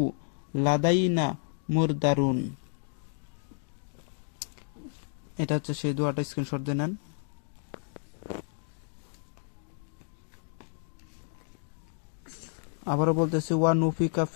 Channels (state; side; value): silent; right; 57 dB below the other